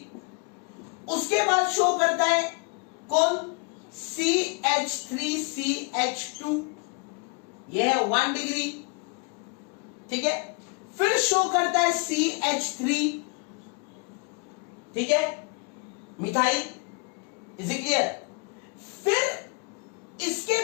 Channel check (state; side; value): quieter; right; 33.1 dB